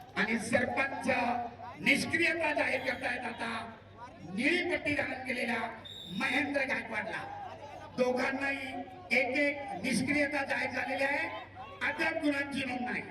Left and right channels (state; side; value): identical; both; correlation 1.00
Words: आणि सरपंच निष्क्रियता जाहीर करतायत. आता निळी पट्टी धारण केलेल्या महेंद्र गायकवाडला दोघांनाही एक एक निष्क्रियता जाहीर झालेली आहे. अद्याप गुणांची नोंद नाही.